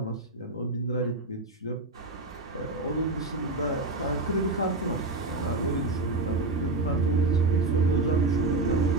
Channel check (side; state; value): left; quieter; 3.0 dB